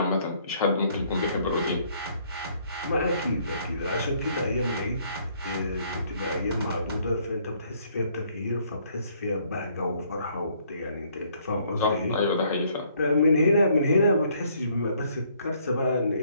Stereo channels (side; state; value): both; inverted; correlation -0.65